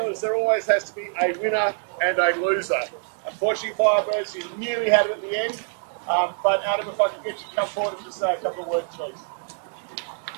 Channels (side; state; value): left; silent; 62 dB below the other